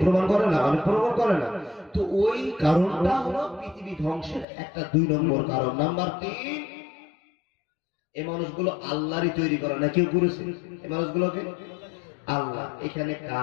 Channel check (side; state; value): right; drops out; at 4.5 s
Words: প্রমাণ করে না? অনেক প্রমাণ করে না? তো ওই কারণটা হলো পৃথিবী ধ্বংসের একটা 2 নম্বর কারণ। নাম্বার 3, এই মানুষগুলো আল্লাহরই তৈরি করা না, কেউ করেছে এই মানুষগুলোকে? আল্লাহ। এখানে